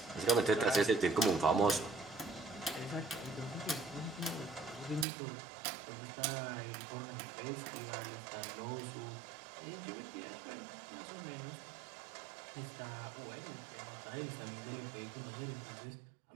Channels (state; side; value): drops out; left; at 5.1 s